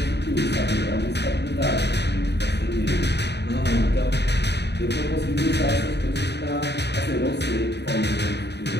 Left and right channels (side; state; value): right; late; 0.49 ms